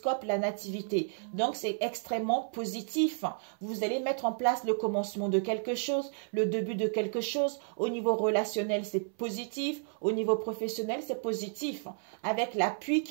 la nativité. Donc, c'est extrêmement positif. Vous allez mettre en place le commencement de quelque chose, le début de quelque chose. Au niveau relationnel, c'est positif. Au niveau professionnel, c'est positif. Avec l'appui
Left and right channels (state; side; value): silent; left; 56 dB below the other